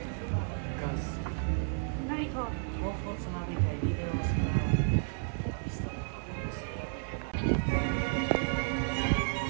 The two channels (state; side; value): silent; left; 56 dB below the other